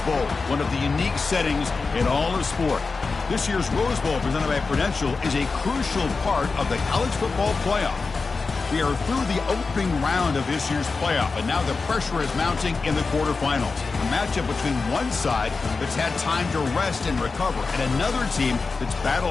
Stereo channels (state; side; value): quieter; right; 4.3 dB